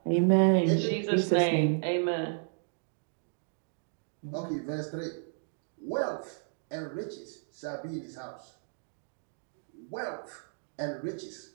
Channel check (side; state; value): left; silent; digital silence